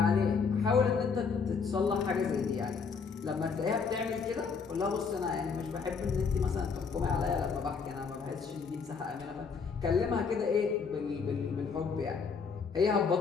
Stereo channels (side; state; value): right; quieter; 5.5 dB